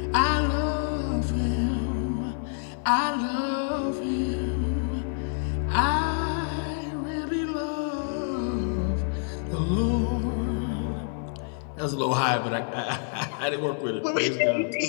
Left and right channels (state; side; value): silent; right; 60 dB below the other